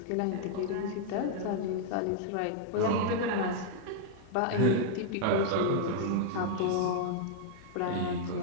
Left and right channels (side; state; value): both; different; correlation -0.01